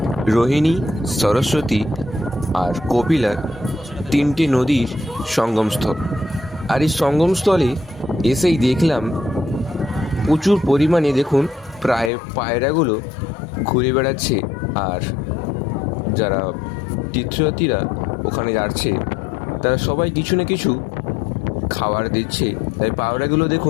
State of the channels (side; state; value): right; drops out; at 12.1 s